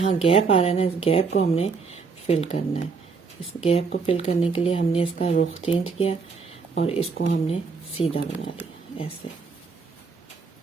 गैप आ रहा है ना, इस गैप को हमने फिल करना है। इस गैप को फिल करने के लिए हमने इसका रुख चेंज किया और इसको हमने सीधा बना लिया ऐसे।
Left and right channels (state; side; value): quieter; left; 4.9 dB